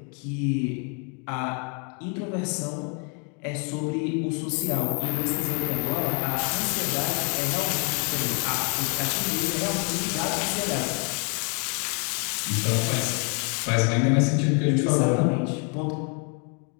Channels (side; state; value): right; quieter; 37.9 dB